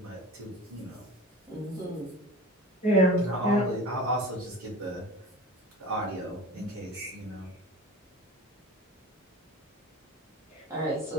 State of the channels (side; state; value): both; normal; correlation 0.35